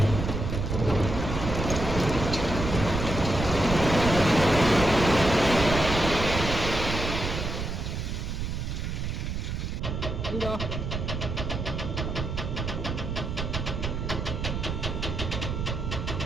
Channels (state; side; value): noise; right; rumble, 3 dB below the sound